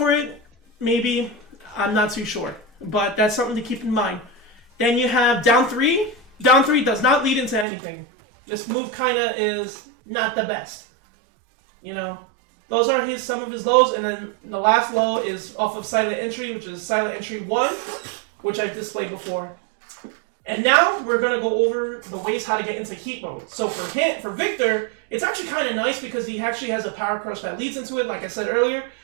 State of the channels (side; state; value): left; drops out; at 7.7 s